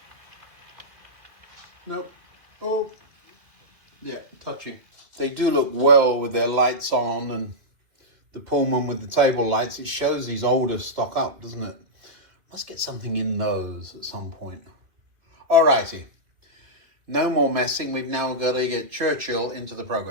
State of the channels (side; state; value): left; late; 2.5 ms